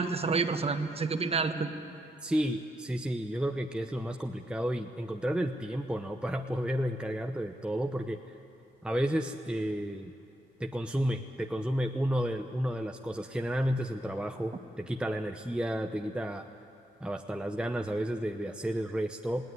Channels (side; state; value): both; normal; correlation 0.82